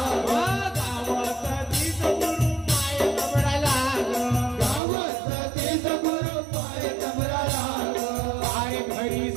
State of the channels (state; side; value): drops out; left; at 4.8 s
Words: गावात तीच गुरु माय कमरा लाग गावात तीच गुरु पाय तमरा लाग अरे घरी